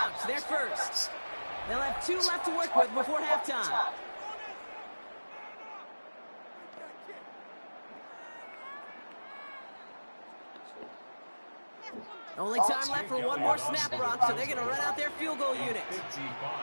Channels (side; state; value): both; inverted; correlation -1.00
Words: They're first. They'll have 2 left to work with before halftime. Only time left for one more snap, Brock, so they're going to run out their field goal unit.